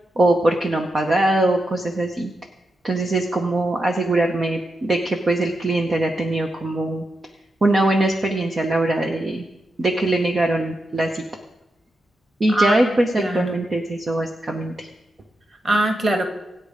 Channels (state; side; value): normal; both; correlation 0.87